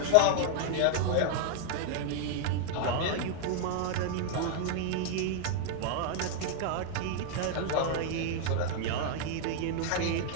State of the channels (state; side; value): different; both; correlation 0.00